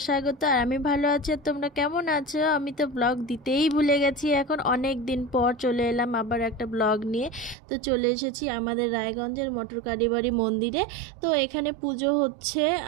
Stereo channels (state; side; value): drops out; left; at 7.6 s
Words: স্বাগত। আর আমি ভালো আছি, আর তোমরা কেমন আছো? আমি তো ব্লগ দিতেই ভুলে গেছি। এখন অনেক দিন পর চলে এলাম আবার একটা ব্লগ নিয়ে। তো চলে এসেছি আমাদের রায়গঞ্জের মটর কালীবাড়ি মন্দিরে। তো এখানে পুজো হচ্ছে,